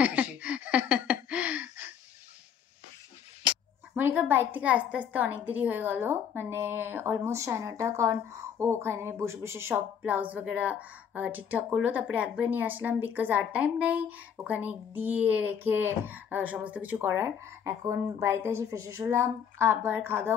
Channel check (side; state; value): right; quieter; 8.0 dB